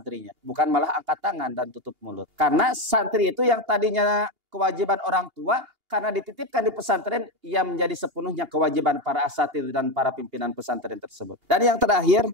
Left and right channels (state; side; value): late; left; 2.8 ms